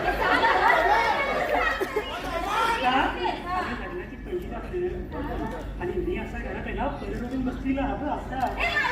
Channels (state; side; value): identical; both; correlation 1.00